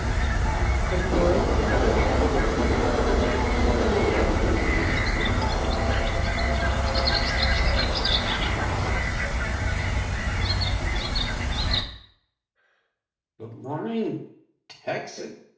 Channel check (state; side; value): identical; both; correlation 1.00